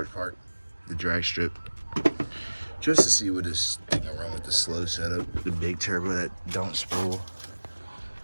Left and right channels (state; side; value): inverted; both; correlation -1.00